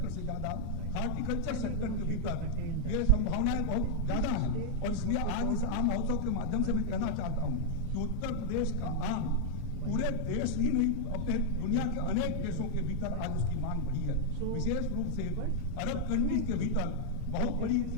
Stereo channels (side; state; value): both; different; correlation -0.01